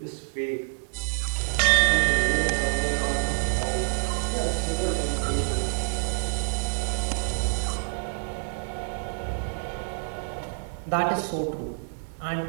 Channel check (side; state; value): left; silent; digital silence